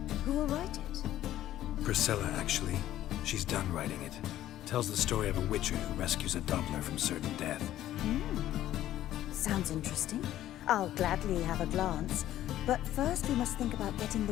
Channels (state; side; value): quieter; right; 13.1 dB